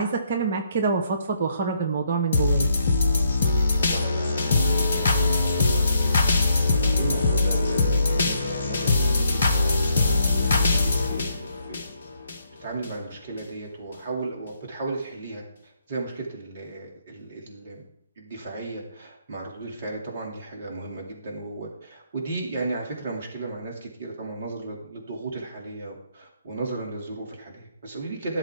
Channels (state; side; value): inverted; both; correlation -0.74